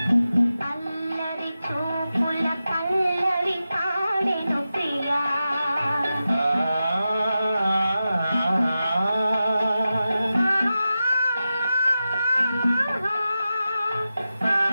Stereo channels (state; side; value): inverted; both; correlation -0.92